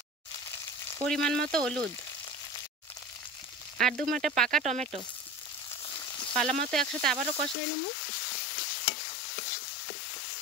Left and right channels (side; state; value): right; drops out; at 7.6 s